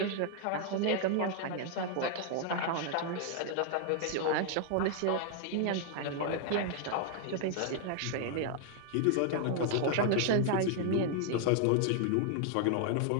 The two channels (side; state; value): both; different; correlation 0.00